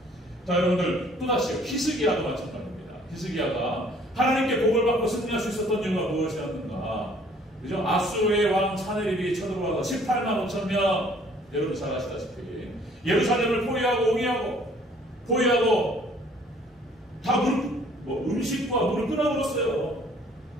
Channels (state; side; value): normal; both; correlation 0.58